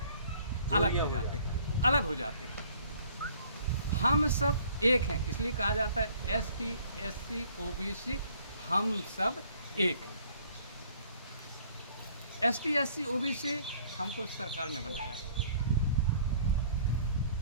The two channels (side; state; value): both; inverted; correlation -0.57